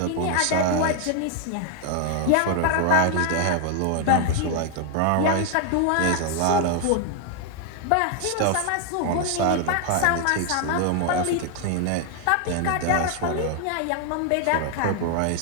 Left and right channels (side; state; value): both; different; correlation 0.00